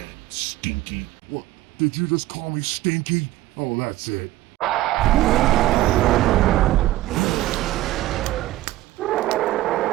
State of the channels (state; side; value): quieter; left; 16.0 dB